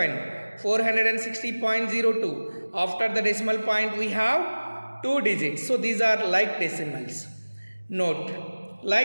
460.02. After the decimal point we have 2 digits. So these are like decimals. Note,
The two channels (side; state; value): both; inverted; correlation -1.00